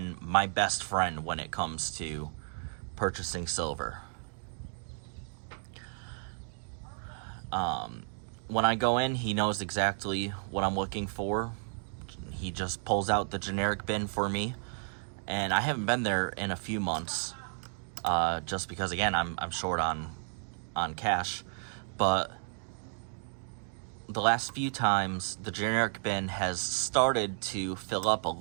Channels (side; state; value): left; silent; 56 dB below the other